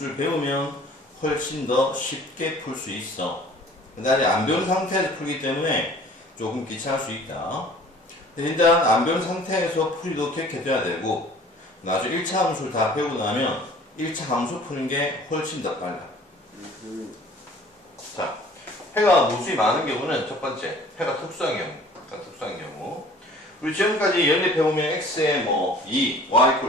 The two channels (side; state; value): both; normal; correlation 0.50